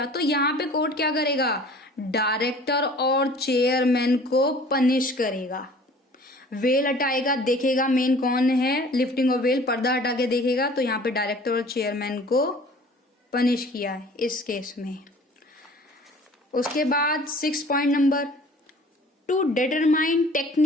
तो यहाँ पे कोर्ट क्या करेगा, डायरेक्टर और चेयरमैन को पनिश करेगा। वेल हटाएगा, देखेगा मेन कौन है, लिफ्टिंग ऑफ वेल, पर्दा हटा के देखेगा, तो यहाँ पे डायरेक्टर और चेयरमैन को पनिश किया है इस केस में। उसके बाद 6 point number, to determine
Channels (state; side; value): normal; both; correlation 0.49